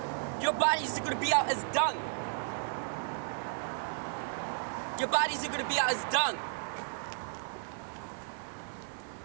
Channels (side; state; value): left; silent; digital silence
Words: Your bodies are gonna be out as dung. Your bodies are gonna be out as dung.